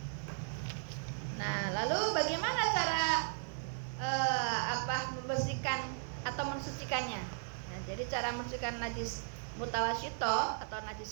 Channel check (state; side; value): silent; left; digital silence